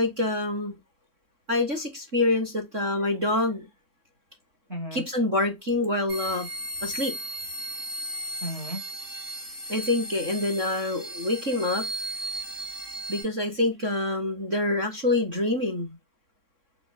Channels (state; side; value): late; left; 3.6 ms